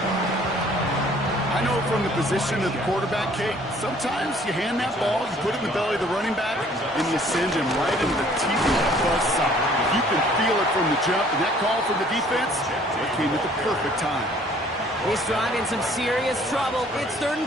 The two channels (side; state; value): both; normal; correlation 0.57